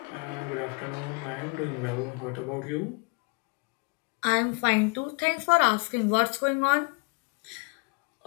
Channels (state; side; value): quieter; right; 33.4 dB